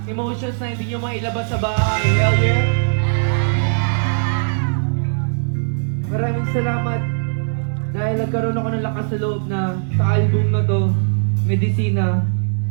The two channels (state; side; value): silent; left; 62 dB below the other